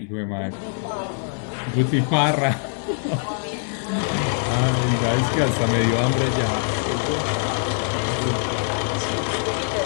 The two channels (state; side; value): silent; right; 62 dB below the other